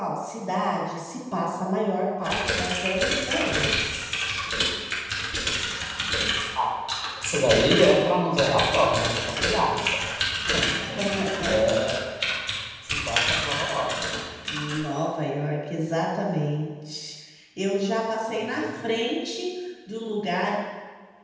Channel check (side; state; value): both; identical; correlation 1.00